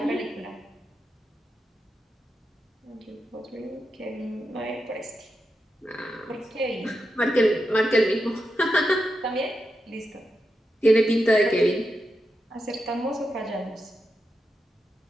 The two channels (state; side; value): normal; both; correlation 0.87